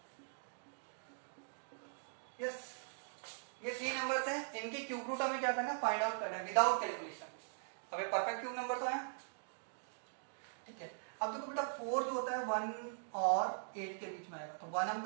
यस ये 3 नंबर्स हैं, इनकी क्यूब रूट हमें क्या करना है, फाइंड आउट करना है विदाउट कैलकुलेशन। अभी परफेक्ट क्यूब नंबर तो है, ठीक है। अब देखो बेटा 4 जो होता है 1 और 8 के बीच में आएगा, तो 1 हम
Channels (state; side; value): silent; left; digital silence